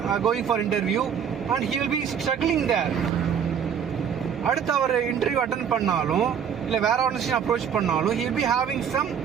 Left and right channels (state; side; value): quieter; left; 7.9 dB